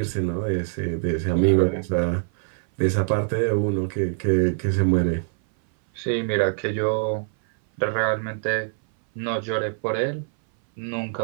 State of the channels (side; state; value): left; silent; 59 dB below the other